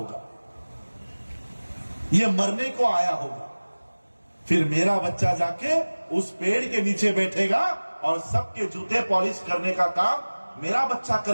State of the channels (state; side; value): inverted; both; correlation -1.00